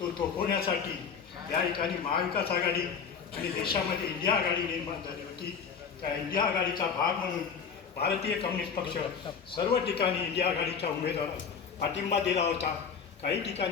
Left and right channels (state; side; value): quieter; right; 6.4 dB